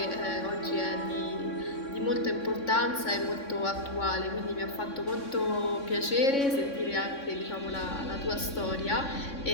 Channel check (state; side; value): late; right; 3.6 ms